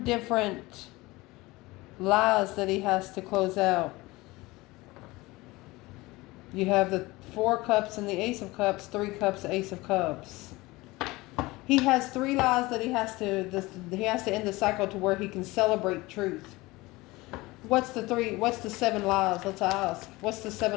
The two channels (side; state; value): right; quieter; 21.1 dB